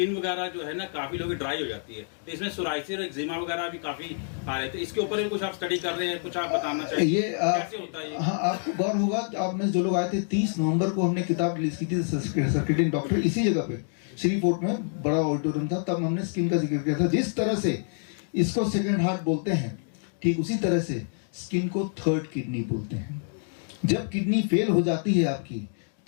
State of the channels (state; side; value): silent; right; digital silence